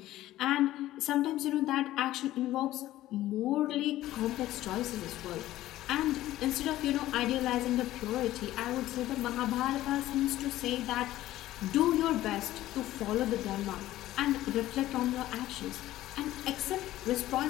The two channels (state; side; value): quieter; right; 14.9 dB